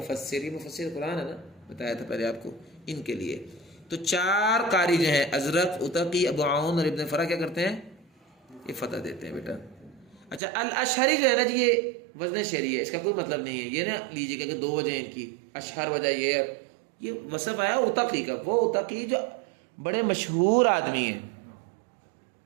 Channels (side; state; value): left; drops out; at 10.4 s